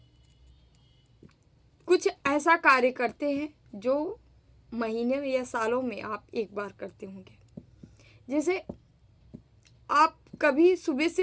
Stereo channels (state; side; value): identical; both; correlation 1.00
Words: कुछ ऐसा कार्य करते हैं जो महीने में या सालों में आप एक बार करते होंगे। जैसे आप कभी सुबह